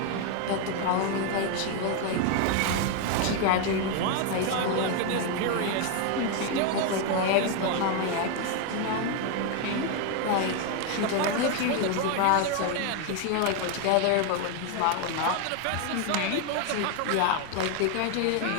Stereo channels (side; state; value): both; different; correlation 0.01